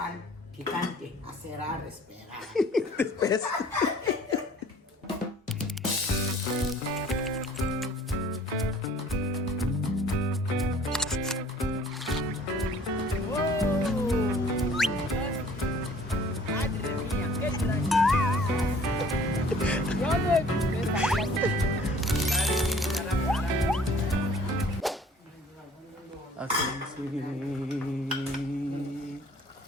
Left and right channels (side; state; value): both; normal; correlation 0.53